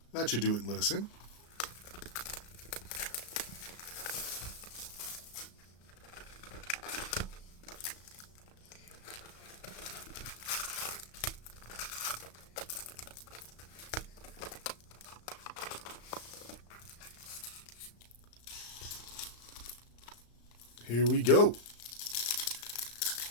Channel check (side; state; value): right; late; 35 ms